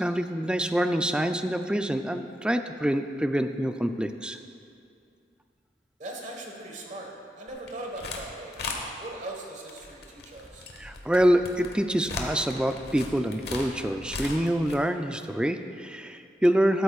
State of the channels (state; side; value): normal; both; correlation 0.88